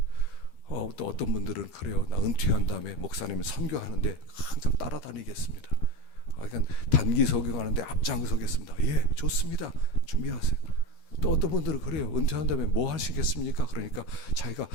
또 어떤 분들은 그래요. 나 은퇴한 다음에 목사님 선교하는데 항상 따라다니겠습니다. 그러니까 단기 설교하는데 앞장서겠습니다. 예, 좋습니다. 준비하세요. 또 어떤 분들은 그래요. 은퇴한 다음에 뭐 하시겠습니까? 그러니까 자기가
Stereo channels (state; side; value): late; right; 13 ms